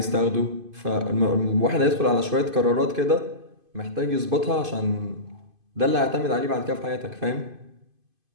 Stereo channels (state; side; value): late; left; 2.5 ms